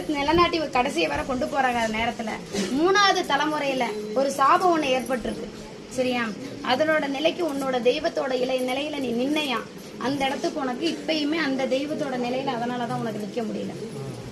நிலநாட்டி கடைசியை வர கொண்டு போறாங்க நேரத்துல 3வது தலைமுறையில ஒரு சாபம் ஒண்ணு ஏற்பட்டிருக்கு, சரியா? அதனோட நிலைக்கு உன்னோட தெய்வத்தோட நிலையில நீ நின்னையா அந்த இடத்துக்கு உனக்கு இப்பயுமே அந்த தெய்வத்தோட நிலையில அதனாலதான் உனக்கு நிக்க முடியல,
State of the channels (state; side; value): identical; both; correlation 1.00